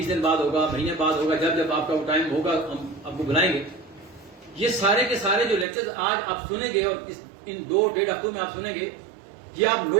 دن بعد ہوگا, مہینے بعد ہوگا, جب آپ کا وہ ٹائم ہوگا ہم آپ کو بلائیں گے. یہ سارے کے سارے جو لیکچر آج آپ سنیں گے اور ان 2-1.5 ہفتوں میں آپ سنیں گے, یہ آپ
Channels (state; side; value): drops out; left; at 5.7 s